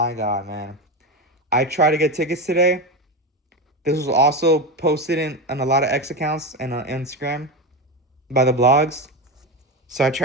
God, man. I tried to get tickets today. This was also posted in a lot of X accounts and on Instagram by the blogs. So I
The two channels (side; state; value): both; normal; correlation 0.16